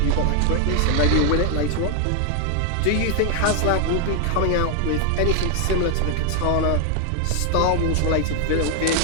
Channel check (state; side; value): different; both; correlation 0.00